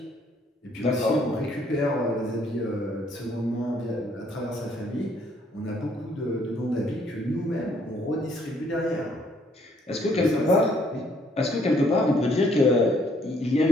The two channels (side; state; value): both; normal; correlation 0.66